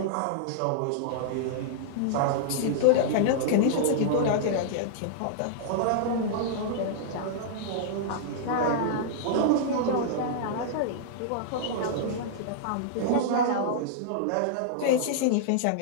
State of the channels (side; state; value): both; different; correlation -0.01